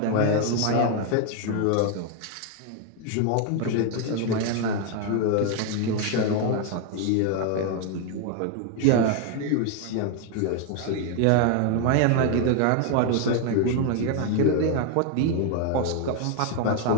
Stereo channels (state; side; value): different; both; correlation 0.01